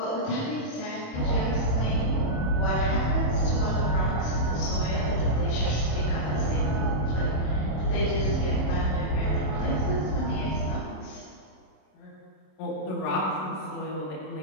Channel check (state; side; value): late; right; 27 ms